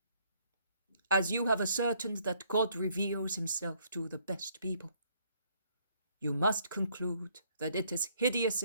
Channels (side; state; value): both; inverted; correlation -0.66